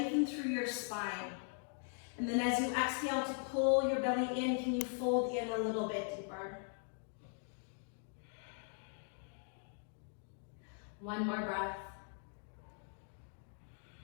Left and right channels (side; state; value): right; silent; 51 dB below the other